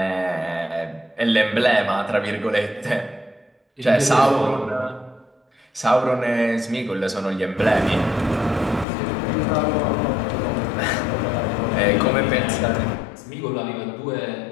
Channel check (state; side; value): drops out; right; at 8.8 s